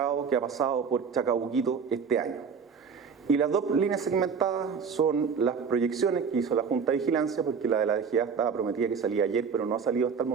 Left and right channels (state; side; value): quieter; left; 6.1 dB